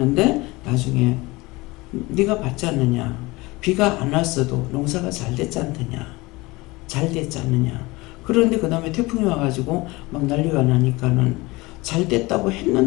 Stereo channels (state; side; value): quieter; right; 22.3 dB